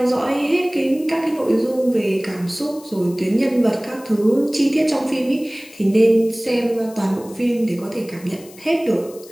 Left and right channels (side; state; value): left; noise; hiss, 22 dB below the sound